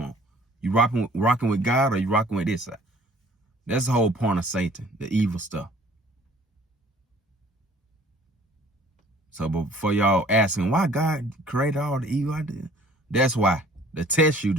on. You rocking with God, or you rocking with this side? That's the whole point of Satan, the evil stuff. So before y'all asking why God created all the evil idea, that's why. To test you,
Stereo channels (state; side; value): normal; both; correlation 0.54